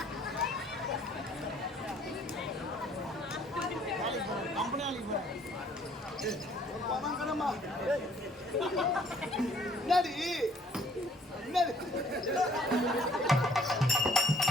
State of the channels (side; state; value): both; normal; correlation 0.60